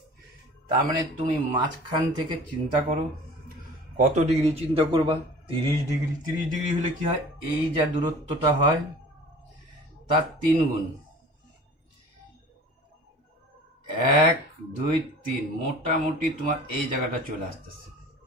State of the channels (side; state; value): both; normal; correlation 0.44